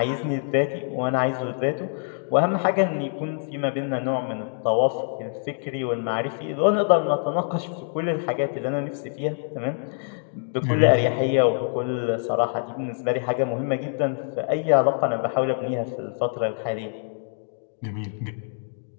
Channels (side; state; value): right; silent; digital silence